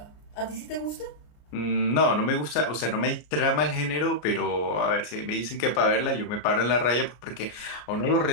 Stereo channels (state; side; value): late; right; 33 ms